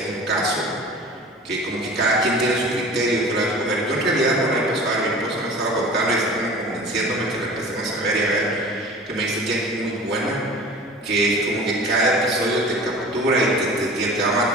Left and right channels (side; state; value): both; normal; correlation 0.41